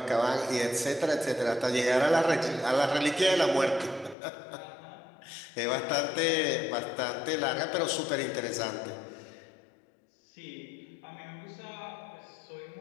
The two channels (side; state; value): right; drops out; at 4.2 s